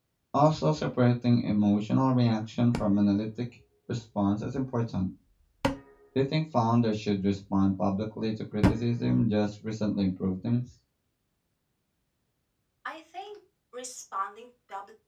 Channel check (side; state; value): both; identical; correlation 1.00